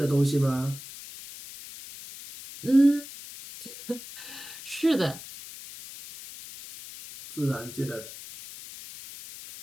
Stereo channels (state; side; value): noise; left; hiss, 14 dB below the sound